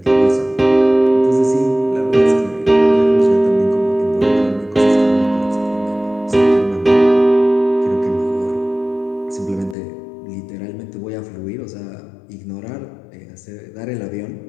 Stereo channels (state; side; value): drops out; right; at 9.8 s